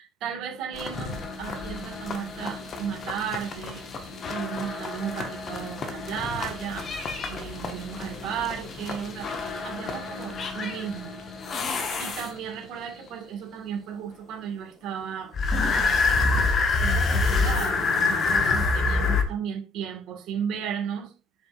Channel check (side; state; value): both; normal; correlation 0.63